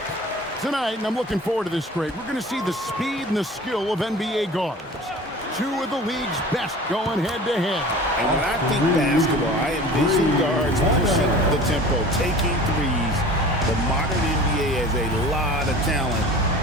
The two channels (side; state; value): both; normal; correlation 0.41